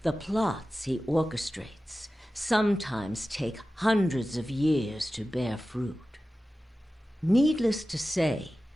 The plots he orchestrates sometimes take hundreds of years to bear fruit. Needless to say,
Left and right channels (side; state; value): both; normal; correlation 0.95